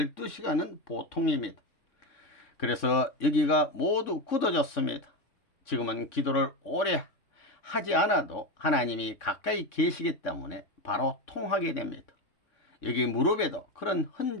보통입니다. 그래서 여기가 모두 굳어졌습니다. 지금은 기도를 오래 하지 않아도 하나님이 가까이 계시기 때문에 바로 통하게 됩니다. 여기 무릎에도 그런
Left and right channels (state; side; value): late; right; 3.6 ms